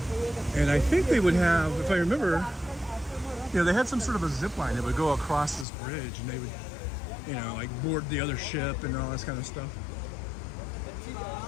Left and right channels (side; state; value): right; drops out; at 5.7 s